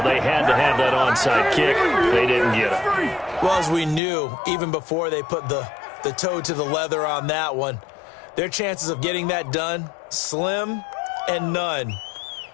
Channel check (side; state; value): right; drops out; at 4.0 s